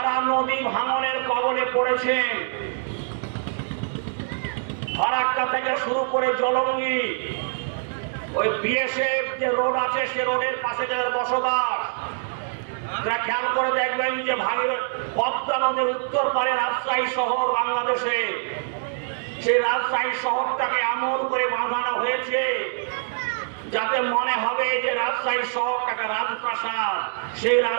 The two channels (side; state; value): left; silent; digital silence